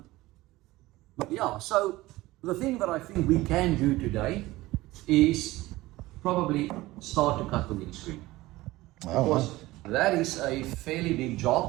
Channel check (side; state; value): left; quieter; 18.6 dB